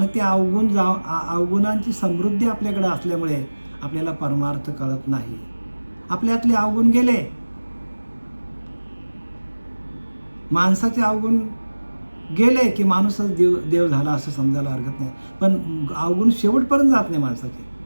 ते अवगुणांची समृद्धी आपल्याकडे असल्यामुळे आपल्याला परमार्थ कळत नाही. आपल्यातले अवगुण गेले, माणसाचे अवगुण गेले की माणूसच देव झाला असं समजायला हरकत नाही. पण अवगुण शेवटपर्यंत जात नाही माणसाचे.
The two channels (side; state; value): both; inverted; correlation -1.00